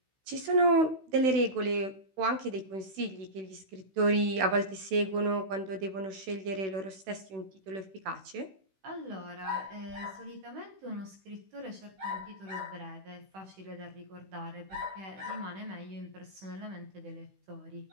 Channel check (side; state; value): left; late; 16 ms